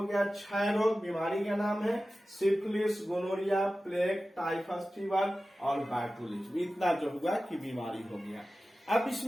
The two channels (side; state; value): both; normal; correlation 0.95